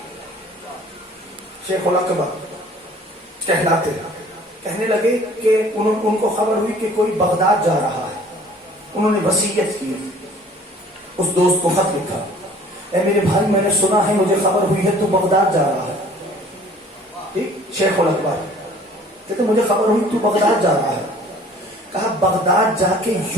شیخ الاکبر کہلاتے کہنے لگے کہ ان کو خبر ہوئی کہ کوئی بغداد جا رہا ہے. انہوں نے وصیت کی، اس دوست کو خط لکھا، اے میرے بھائی میں نے سنا ہے، مجھے خبر ہوئی ہے تو بغداد جا رہا ہے. ٹھیک، شیخ الاکبر کہتے مجھے خبر ہوئی تو بغداد جا رہا ہے. کہا بغداد جا کے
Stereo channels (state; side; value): normal; both; correlation 0.52